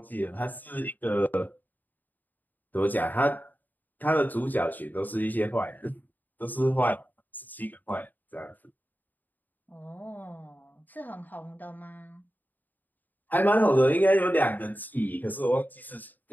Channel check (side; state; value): right; late; 0.086 ms